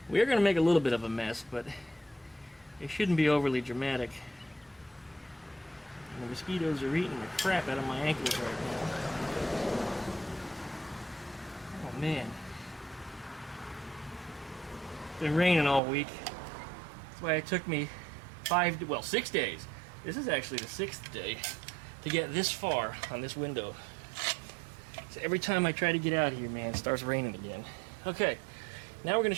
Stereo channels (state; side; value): drops out; left; at 15.8 s